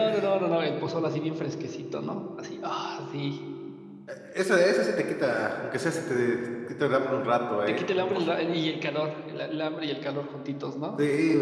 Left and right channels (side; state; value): both; identical; correlation 1.00